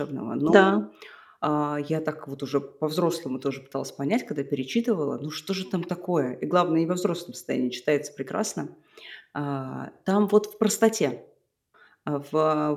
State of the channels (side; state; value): both; identical; correlation 1.00